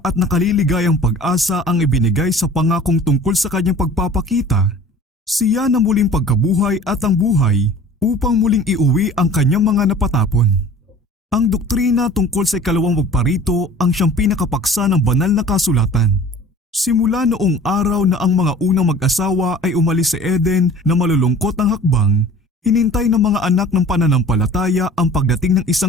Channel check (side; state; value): both; normal; correlation 0.45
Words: nakaliligayang pag-asa ang ibinigay sa pangakong tungkol sa kanyang pagpapakita. Siya na muling pagkabuhay at ang buhay upang muling iuwi ang kanyang mga napatapon. Ang doktrina tungkol sa ikalawang magparito ang siyang pinakapaksa ng banal na kasulatan. Simula noong araw na ang mga unang mag-asawa ay umalis sa Eden na malulungkot ang hakbang, hinintay ng mga anak ng pananampalataya ang pagdating ng